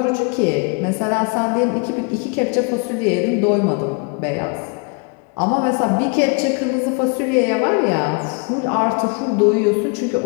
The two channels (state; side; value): quieter; right; 34.8 dB